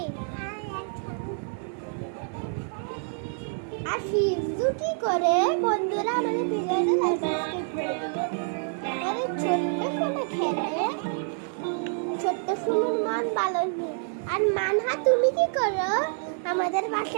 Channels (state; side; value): silent; left; 60 dB below the other